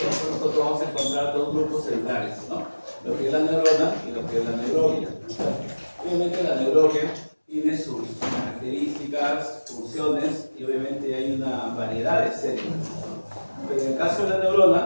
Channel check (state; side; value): inverted; both; correlation -1.00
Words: nosotros vamos a encontrar dos grupos celulares, ¿no? Lo que es la neurona y lo que es la neuroglia. Obviamente la neuroglia tiene sus características, funciones y obviamente hay una variedad de células. Pero en el caso de la